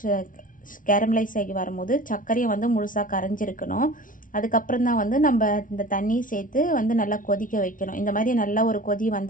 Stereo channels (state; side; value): late; right; 0.38 ms